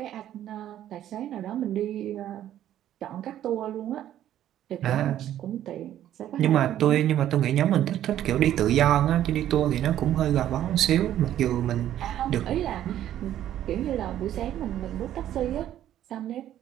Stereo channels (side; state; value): left; quieter; 11.8 dB